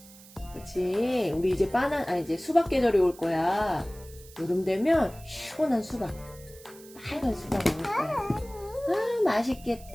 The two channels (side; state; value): right; noise; hiss, 21 dB below the sound